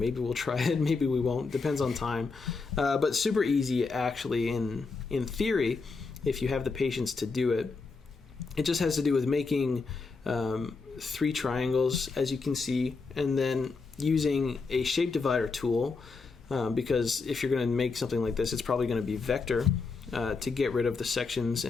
we'll try it, maybe we won't, depends on time. But super easy actually in theory, if you have the patience to do it. It just has to do with making 3 triangles, as you can see, and then using a shape divider tool, because if you're going to make something like this, it's probably going to be vector to get rid of the sections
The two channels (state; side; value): quieter; right; 4.3 dB